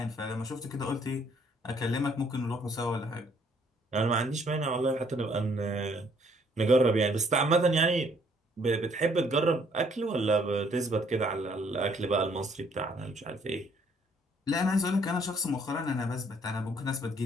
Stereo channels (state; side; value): normal; both; correlation 0.64